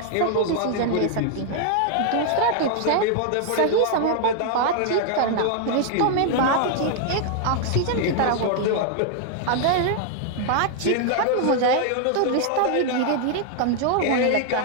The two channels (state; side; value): different; both; correlation 0.00